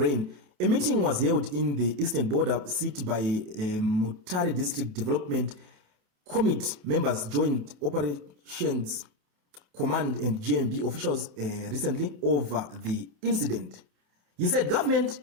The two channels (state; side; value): late; left; 28 ms